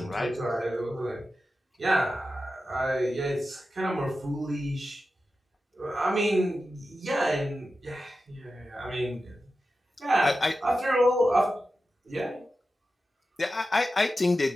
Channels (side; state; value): both; normal; correlation 0.92